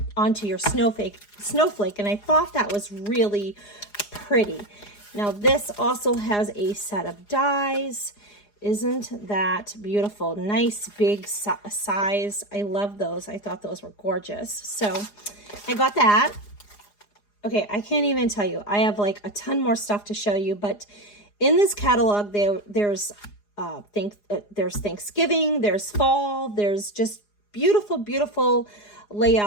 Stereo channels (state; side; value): late; right; 4.9 ms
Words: onto your snowflake. And I thought that was really pretty. Now this also has a set of dies. Isn't that beautiful? Nice big size. I love those. I thought those were gorgeous. So I got that. Okay, I can't even tell you. I have like a ton more stuff to show you, but in this catalog there's Thanksgiving, there's fall, there's just beautiful